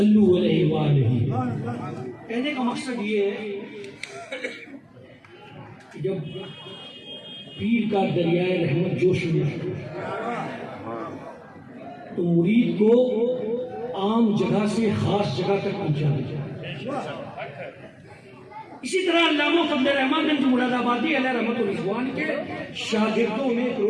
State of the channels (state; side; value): identical; both; correlation 1.00